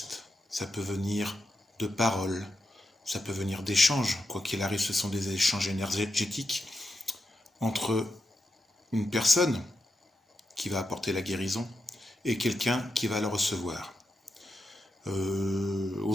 ça peut venir de paroles, ça peut venir d'échanges. Quoi qu'il arrive, ce sont des échanges énergétiques entre une personne qui va apporter la guérison et quelqu'un qui va le recevoir.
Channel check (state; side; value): normal; both; correlation 0.86